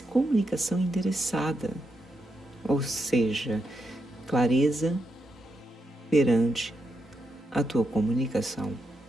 comunicação endereçada. Ou seja, clareza perante a tua comunicação.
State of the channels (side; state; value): both; normal; correlation 0.83